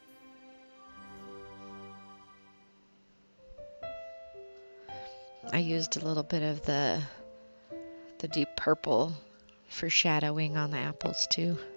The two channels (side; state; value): both; inverted; correlation -1.00